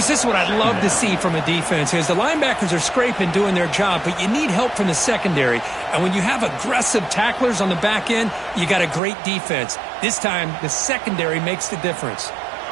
this is what I'd love to see from a defense is the linebackers are scraping, doing their job, but you need help from the secondary. And when you have aggressive tacklers on the back end, you got a great defense. This time, the secondary makes the difference.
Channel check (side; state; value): left; drops out; at 9.0 s